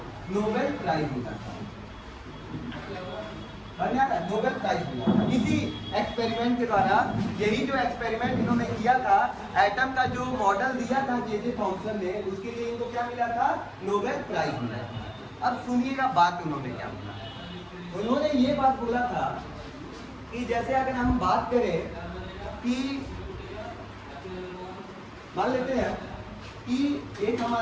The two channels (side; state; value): both; identical; correlation 1.00